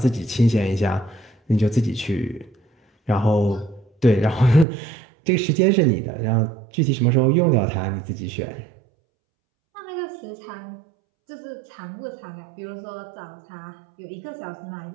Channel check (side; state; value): left; drops out; at 4.7 s